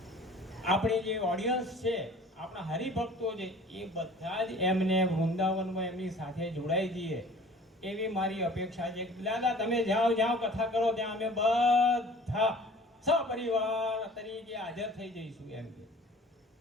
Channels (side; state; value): both; normal; correlation 0.47